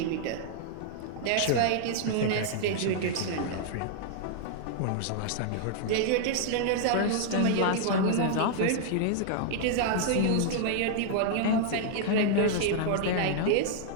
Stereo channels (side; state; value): both; different; correlation -0.01